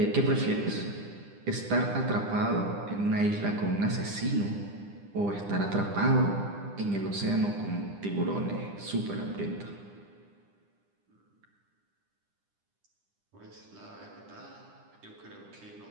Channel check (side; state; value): left; late; 9.9 ms